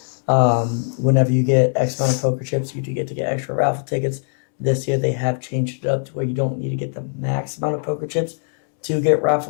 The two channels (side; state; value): right; silent; digital silence